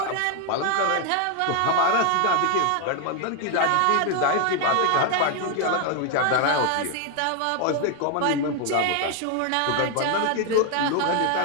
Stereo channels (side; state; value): both; different; correlation 0.01